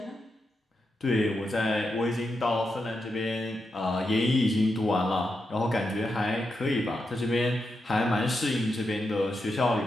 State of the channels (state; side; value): normal; both; correlation 0.86